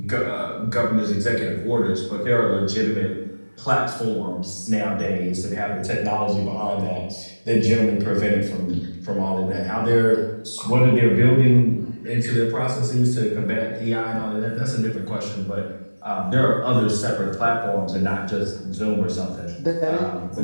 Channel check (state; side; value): inverted; both; correlation -1.00